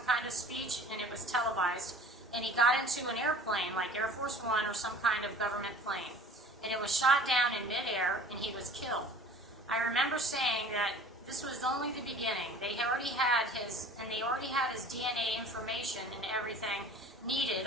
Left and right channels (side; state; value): both; normal; correlation 0.45